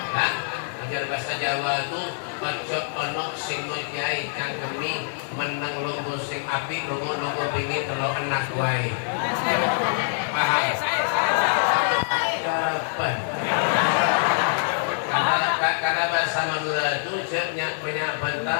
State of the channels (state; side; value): silent; right; 59 dB below the other